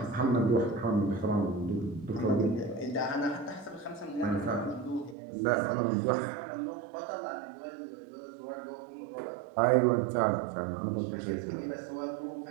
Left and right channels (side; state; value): left; drops out; at 5.2 s